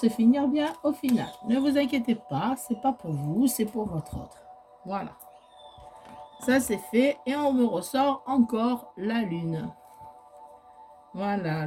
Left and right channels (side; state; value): both; identical; correlation 1.00